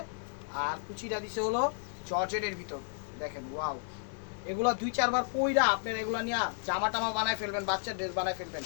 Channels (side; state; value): right; silent; 56 dB below the other